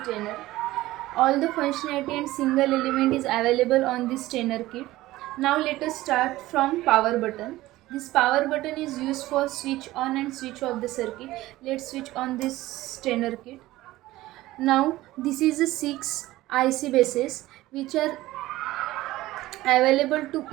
trainer. All the functionality and single element is available on this trainer kit. Now let us start from power button. This power button is used for switch on and switch off the circuit. Let's switch on this trainer kit. Now this is the 6 IC bases which are available to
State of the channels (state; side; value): quieter; left; 17.0 dB